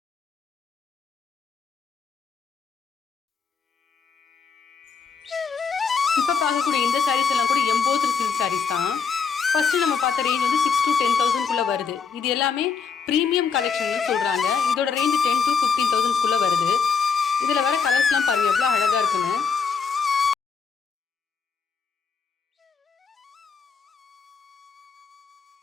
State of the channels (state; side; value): quieter; right; 5.7 dB